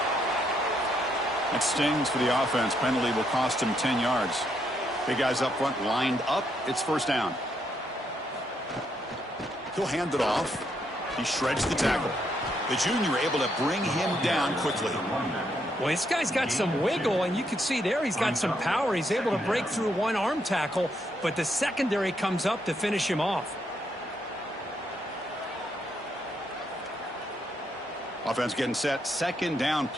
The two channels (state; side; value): normal; both; correlation 0.76